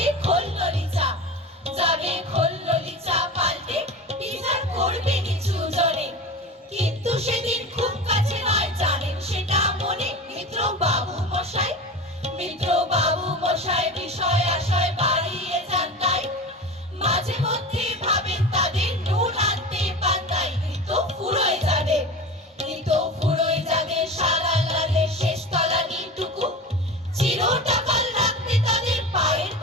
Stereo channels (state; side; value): normal; both; correlation 0.30